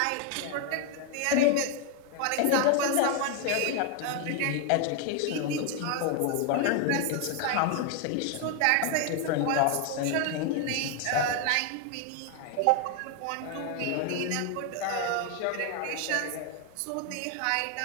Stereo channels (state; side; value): different; both; correlation 0.01